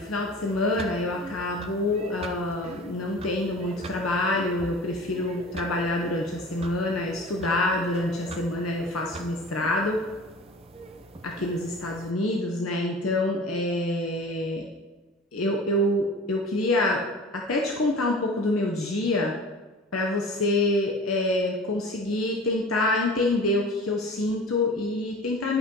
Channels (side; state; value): both; normal; correlation 0.40